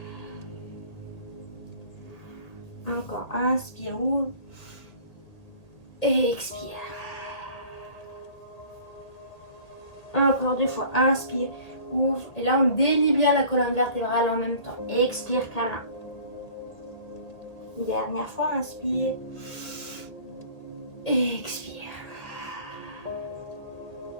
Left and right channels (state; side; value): late; right; 1.8 ms